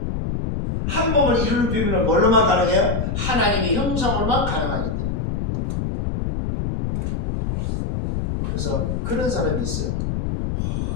한 몸을 이루는 비밀은 뭘로만 가능해요? 하나님의 형상으로만 가능하기 때문에. 그래서 그런 사람이 있어요.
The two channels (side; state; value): left; noise; rumble, 2 dB below the sound